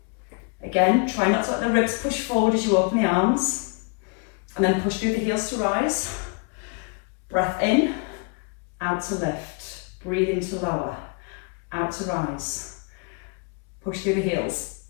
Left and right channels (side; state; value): right; quieter; 34.8 dB